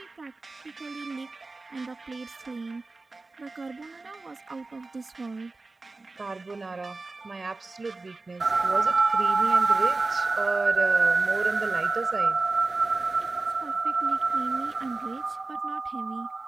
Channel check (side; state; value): left; quieter; 3.5 dB